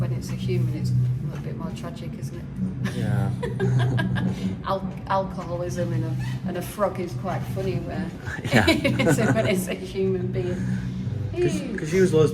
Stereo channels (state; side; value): identical; both; correlation 1.00